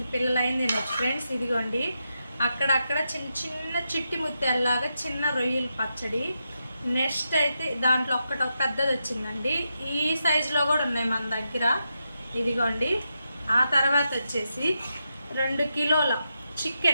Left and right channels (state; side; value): inverted; both; correlation -0.86